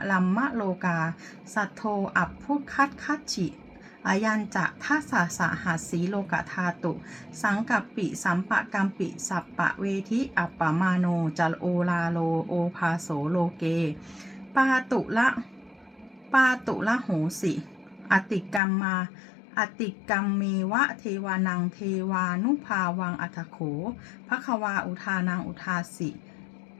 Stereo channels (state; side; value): drops out; right; at 18.6 s